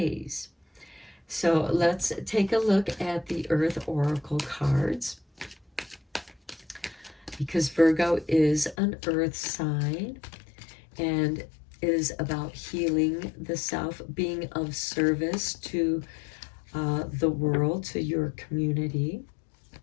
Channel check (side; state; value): right; drops out; at 8.8 s